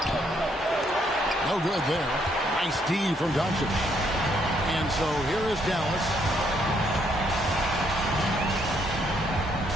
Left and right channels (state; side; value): normal; both; correlation 0.71